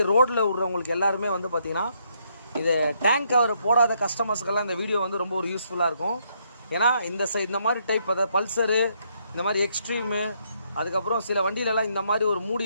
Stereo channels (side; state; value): both; inverted; correlation -0.73